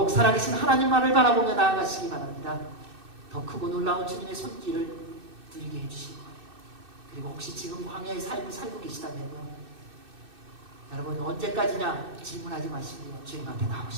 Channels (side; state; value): left; late; 2.6 ms